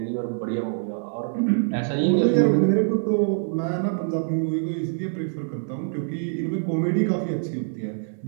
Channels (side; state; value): left; silent; digital silence